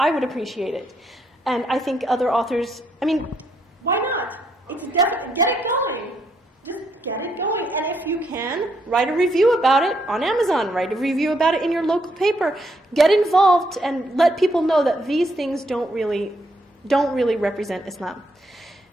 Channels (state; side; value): normal; both; correlation 0.75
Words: would appreciate it. And I think other authors, why not? It's definitely, get it going. Just get it going. And if you can, write a review about it on Amazon. Write a review about it in your local paper. Get involved and let people know that these things don't really represent Islam.